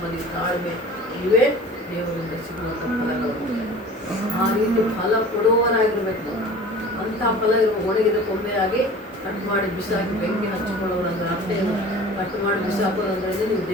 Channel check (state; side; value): normal; both; correlation 0.42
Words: ತಾಳ್ಮೆ ಇವೇ ದೇವರಿಂದ ಸಿಗುವಂಥ ಫಲಗಳು. ಆ ರೀತಿ ಫಲ ಕೊಡುವವರಾಗಿರ್ಬೇಕು ನಾವು. ಅಂಥ ಫಲ ಇರುವ ಒಣಗಿದ ಕೊಂಬೆಯಾಗಿ ಕಟ್ ಮಾಡಿ ಬಿಸಾಕಿ ಬೆಂಕಿ ಹಚ್ಚಿಕೊಳ್ಳೋರು ಅಂದರೆ ಅರ್ಥ ಏನು? ಕಟ್ ಮಾಡಿ ಬಿಸಾಕೋದಂದ್ರೆ ನೀವು